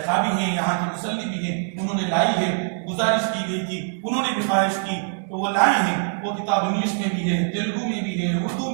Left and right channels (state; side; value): silent; left; digital silence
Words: خواہ بھی ہیں، یہاں کے مصلی بھی ہیں، انہوں نے لائی ہے، گزارش کی گئی تھی، انہوں نے بھی خواہش کی تو وہ لائے ہیں۔ وہ کتاب انگلش میں بھی ہے، تیلگو میں بھی ہے، اردو